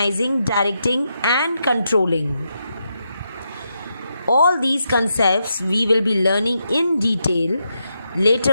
directing, and controlling. All these concepts we will be learning in detail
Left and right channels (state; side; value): inverted; both; correlation -0.83